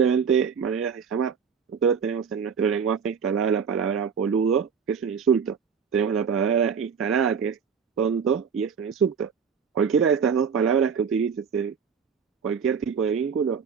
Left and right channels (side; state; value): left; quieter; 6.6 dB